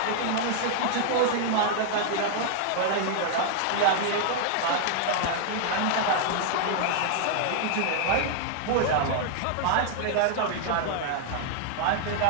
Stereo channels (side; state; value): both; different; correlation 0.00